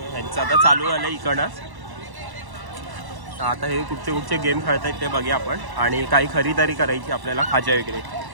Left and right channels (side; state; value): left; late; 1.1 ms